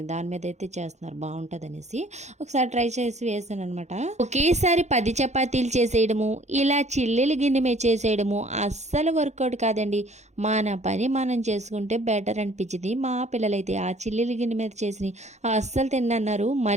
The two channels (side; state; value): left; late; 0.33 ms